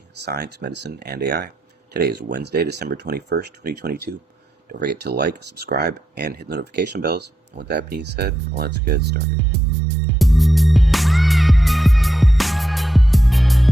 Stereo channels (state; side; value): normal; both; correlation 0.84